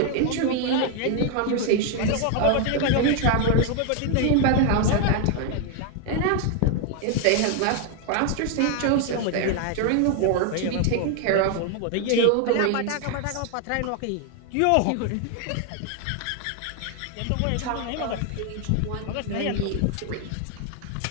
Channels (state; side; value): different; both; correlation 0.01